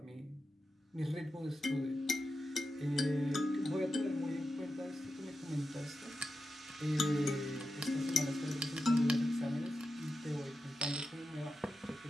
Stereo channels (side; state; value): both; normal; correlation 0.90